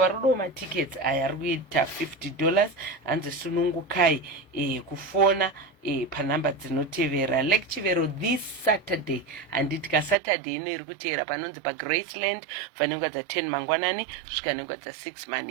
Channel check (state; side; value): drops out; left; at 10.2 s